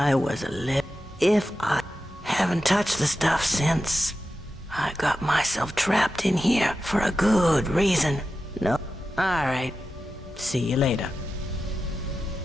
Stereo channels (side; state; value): both; normal; correlation 0.91